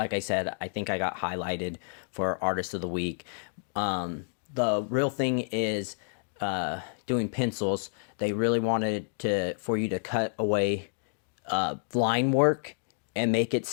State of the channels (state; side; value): silent; right; digital silence